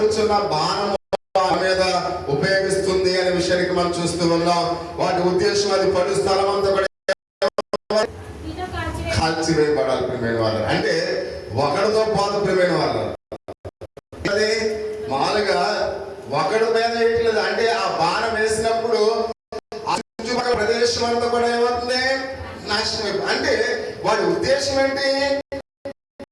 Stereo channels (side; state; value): both; identical; correlation 1.00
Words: బాణము మీద ఉపయోగిస్తుంది అనే విషయానికి మనం చూస్తూ ఉన్నాం. వాటి ఉద్దేశం అది పడు స్థలం అంతా కూడా కాల్చివేయబడాలి ప్రియమైన వాళ్ళు. అంటే ఒకడితో పాటు ప్రియమైన వాళ్ళు అది మామూలుగా ఒకడి మీద వేయట్లేదు. అంటే ఆ బాణం వేసినప్పుడు చుట్టుపక్కల ప్రదేశం అంతా కూడా ఏమవుతుంది? నాశనం. అంటే వాడి ఉద్దేశం ఏంటి?